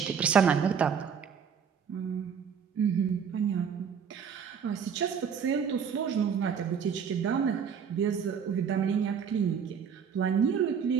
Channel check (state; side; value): quieter; left; 7.0 dB